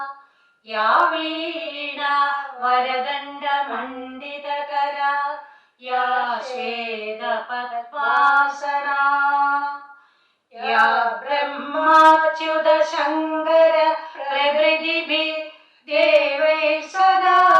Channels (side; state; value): both; identical; correlation 1.00